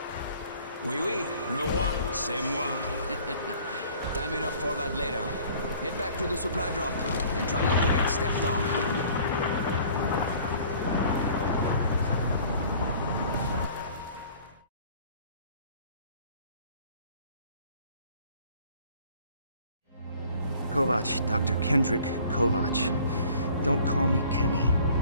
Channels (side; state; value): both; inverted; correlation -0.52